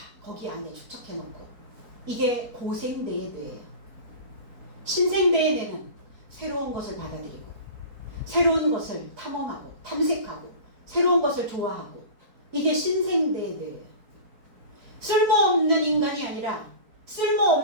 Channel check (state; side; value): late; left; 4.4 ms